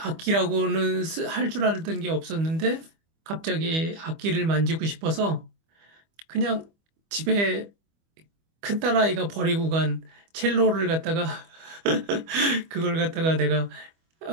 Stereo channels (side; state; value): left; late; 25 ms